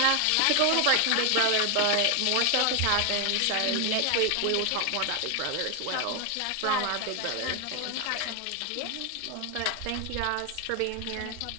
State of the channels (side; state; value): both; different; correlation 0.01